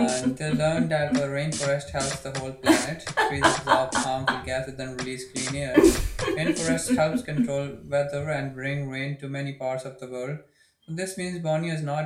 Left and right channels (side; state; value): both; identical; correlation 1.00